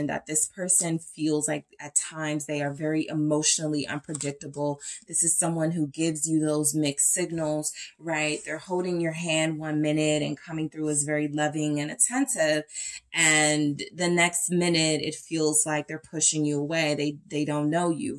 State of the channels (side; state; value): both; identical; correlation 1.00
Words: that this person feels like at times they are very emotionally unpredictable. This is someone who gives you those mixed signals, right? They're holding your hand one minute and coming through as very loving and attentive. And the next minute, it feels like they're pushing you away. They don't know you,